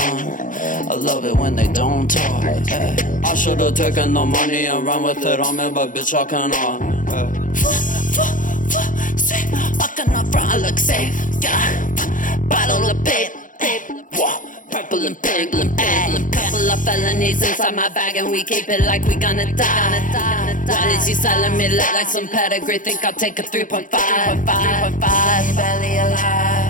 I love it when they don't talk. I should've taken the money and run with it on me, but bitch I cannot. Fucking up front, I look safe, yeah. Bottle of babe, purple and pink, couple of felonies inside my bag, and we keep it like we gonna die. Why is he selling me lit like some pedigree? Think I'll take a 3.5. Barely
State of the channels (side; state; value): right; late; 0.38 ms